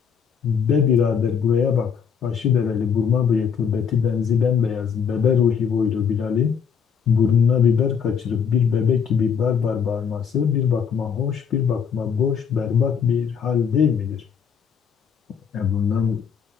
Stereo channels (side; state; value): right; quieter; 7.0 dB